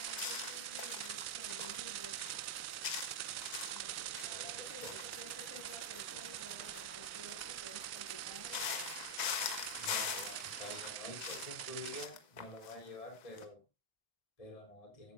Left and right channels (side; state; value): right; late; 1.9 ms